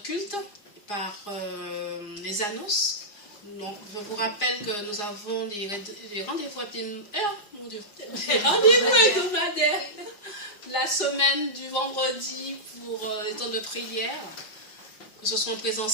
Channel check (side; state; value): right; late; 4.9 ms